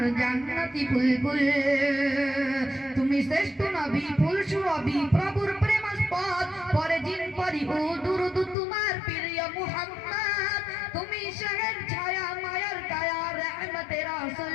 জান্নাতি বুলবুল তুমি শ্রেষ্ঠ নবী ফুল সুরবি প্রভুর প্রেমাস্পদ পরে জিন পরি ও দুরুদ তোমার প্রিয় মুহাম্মদ তুমি শহর ছায়া মায়ার কায়া রহমতে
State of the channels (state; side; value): drops out; right; at 8.6 s